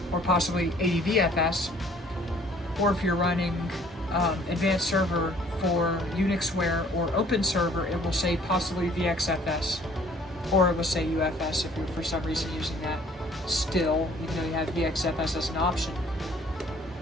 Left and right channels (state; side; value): normal; both; correlation 0.56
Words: or possibly ADVFS. Or if you're running Advanced Server for Unixware or Open Server, it will say possibly VXFS, or it will say UFS if you're for some reason using that still, even though you have VXFS as an option.